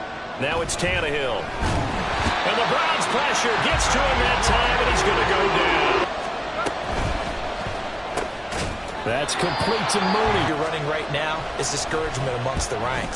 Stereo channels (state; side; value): identical; both; correlation 1.00